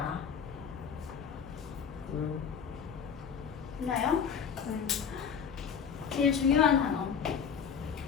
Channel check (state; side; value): quieter; right; 7.1 dB